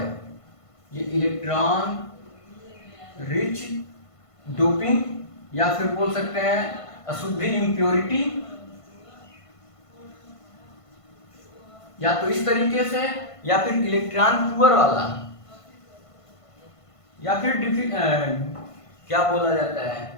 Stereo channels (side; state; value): right; late; 1.5 ms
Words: ये इलेक्ट्रॉन रिच डोपिंग, या फिर बोल सकते हैं अशुद्धि इम्प्योरिटी, या तो इस तरीके से, या फिर इलेक्ट्रॉन पुअर वाला, या फिर क्या बोला जाता